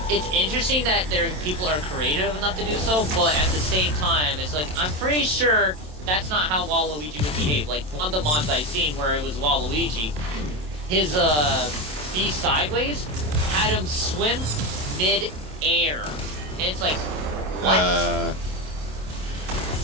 it's interesting that people are creative enough to do so, but at the same time, it's like I'm pretty sure that's not how Waluigi would behave. Like one of the mods I've seen where it was Waluigi, his be sideways had him swim mid-air, and it's like what?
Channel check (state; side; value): late; left; 27 ms